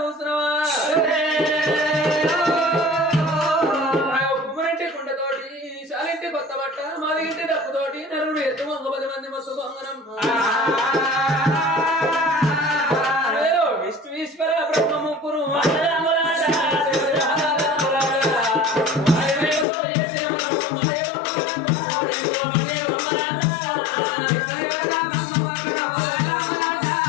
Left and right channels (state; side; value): drops out; right; at 19.7 s